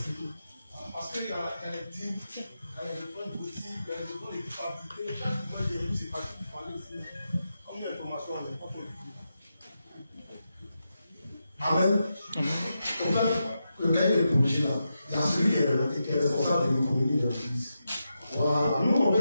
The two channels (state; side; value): inverted; both; correlation -0.87